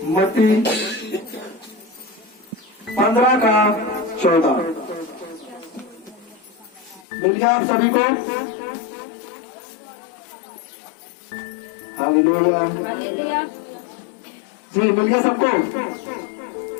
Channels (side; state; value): right; drops out; at 7.1 s